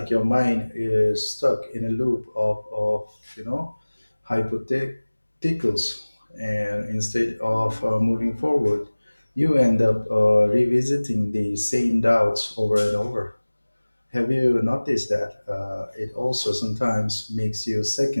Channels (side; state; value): both; inverted; correlation -1.00